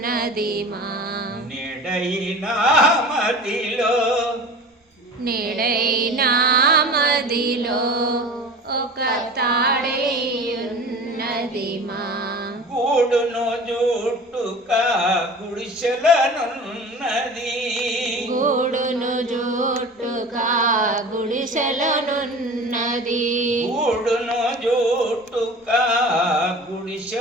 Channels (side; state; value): both; normal; correlation 0.38